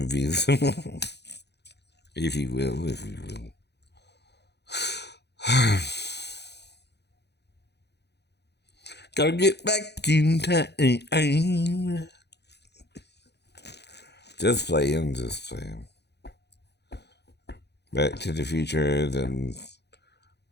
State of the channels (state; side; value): late; right; 0.49 ms